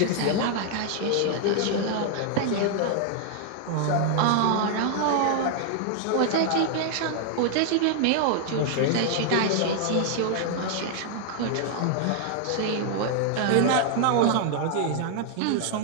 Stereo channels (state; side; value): different; both; correlation 0.00